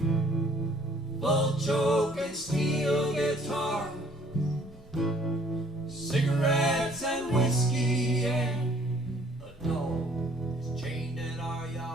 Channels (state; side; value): normal; both; correlation 0.59